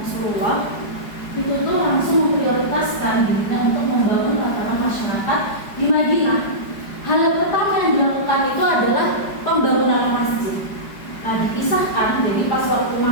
itu tuh langsung memprioritaskan dirinya untuk membangun tatanan masyarakat di Madinah. Hal yang pertama yang dilakukan itu adalah pembangunan masjid. Nah, dipisahkan, jadi pas waktu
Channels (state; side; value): late; right; 5.0 ms